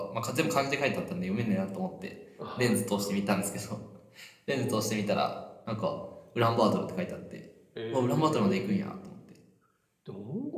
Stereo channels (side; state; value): both; identical; correlation 1.00